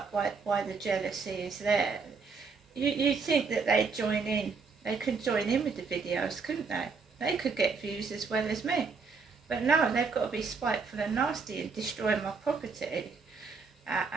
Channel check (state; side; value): quieter; left; 4.9 dB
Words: why the jealousy is there. You think that they'd join in. They could join in with the videos, couldn't they? They could get views as well as me. But no, they've got to be spiteful and nasty and destroy my property